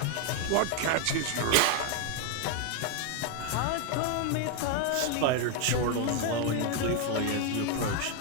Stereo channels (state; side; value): different; both; correlation 0.01